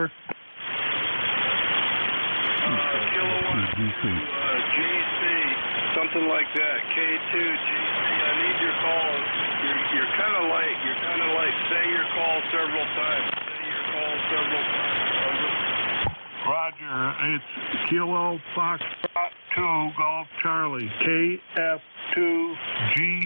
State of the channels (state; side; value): inverted; both; correlation -1.00